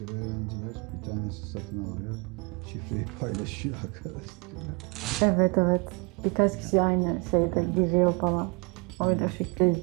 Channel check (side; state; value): left; quieter; 31.1 dB